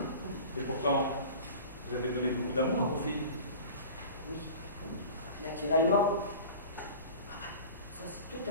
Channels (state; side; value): inverted; both; correlation -0.39